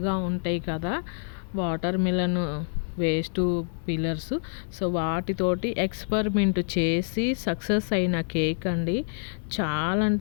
ఉంటాయి కదా, water melon waste pillars. So వాటితోటి ఎక్స్పెరిమెంట్ చేసి సక్సెస్ అయిన కేక్ అండి. చాలా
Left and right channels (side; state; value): right; silent; digital silence